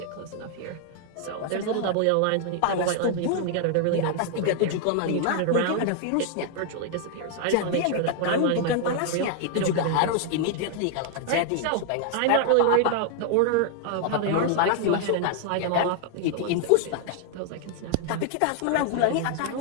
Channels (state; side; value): different; both; correlation 0.00